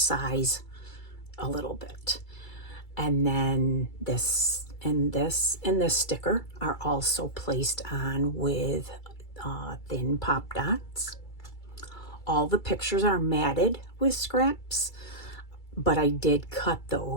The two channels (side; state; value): right; late; 2.3 ms